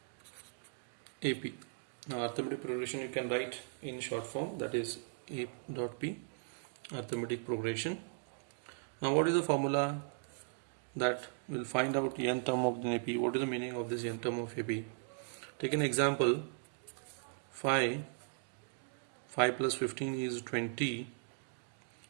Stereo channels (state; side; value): silent; left; digital silence